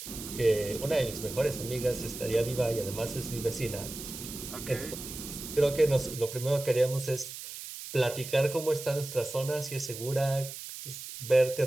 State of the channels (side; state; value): right; noise; hiss, 10 dB below the sound